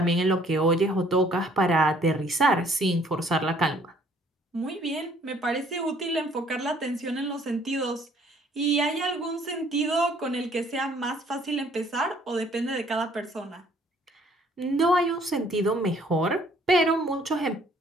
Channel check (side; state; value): both; normal; correlation 0.61